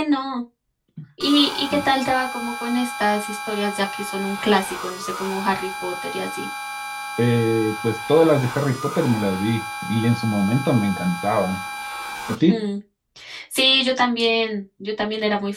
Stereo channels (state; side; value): identical; both; correlation 1.00